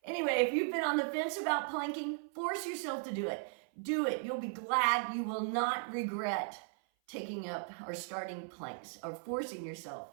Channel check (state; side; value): silent; left; 53 dB below the other